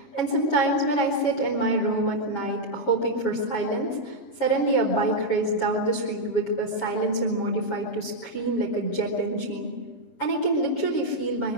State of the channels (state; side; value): late; right; 7.2 ms